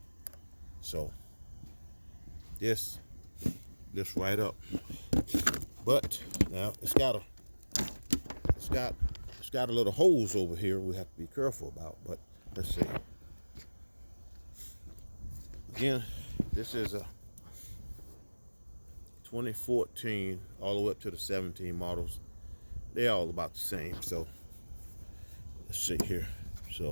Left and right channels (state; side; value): inverted; both; correlation -1.00